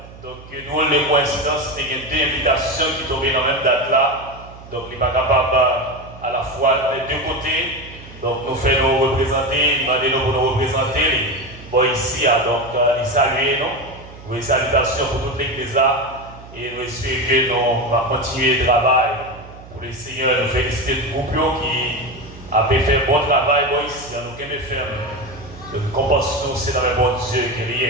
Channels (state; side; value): noise; right; hum, 18 dB below the sound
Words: Donc nous les coïncidences, il y a deux invitations qui tombent dans la même date là. Donc il n'est pas capable à la fois des deux côtés. Donc nous faisons nous représenter, demandez-nous pour nous représenter. Bon ici, donc les saluer nous. Oui, salutations pour toute l'église là et nous espérons que nous allons continuer le travail pour le Seigneur. Nous féliciter le groupe qui a fait un bon travail ici, nous allons faire compassion, c'est dans le bon Dieu qui